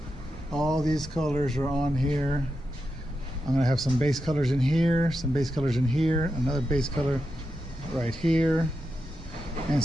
All these colors are on here. I'm gonna have some base colors in here, some base colors in here, another base color right here, and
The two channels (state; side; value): normal; both; correlation 0.88